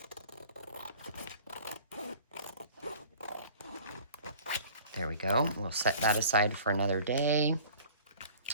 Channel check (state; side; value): inverted; both; correlation -0.48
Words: There we go. We'll set that aside for another day.